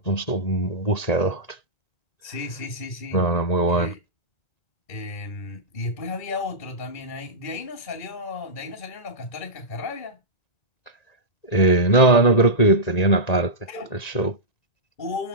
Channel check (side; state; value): right; late; 1.9 ms